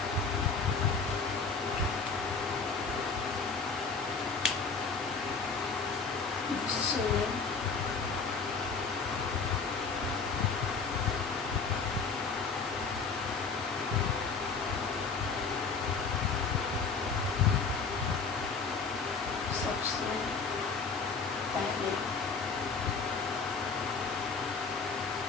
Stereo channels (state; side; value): quieter; right; 4.9 dB